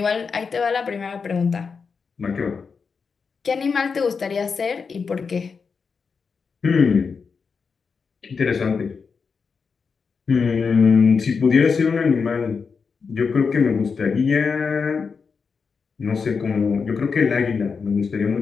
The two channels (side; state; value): right; quieter; 5.4 dB